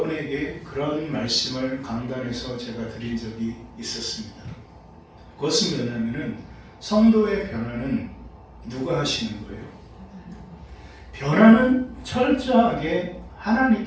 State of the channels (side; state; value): both; identical; correlation 1.00